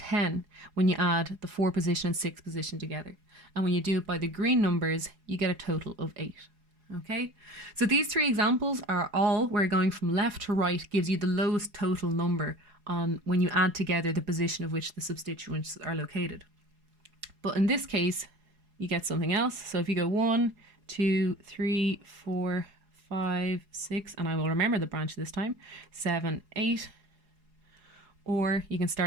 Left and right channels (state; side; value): late; left; 4.8 ms